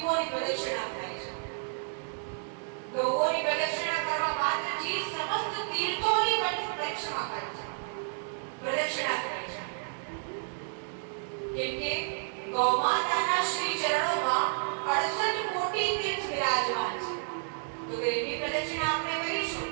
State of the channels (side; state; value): left; silent; 57 dB below the other